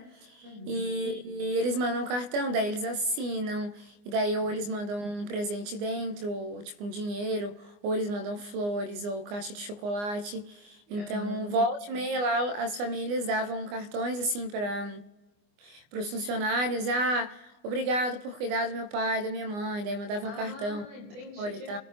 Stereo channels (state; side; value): late; left; 24 ms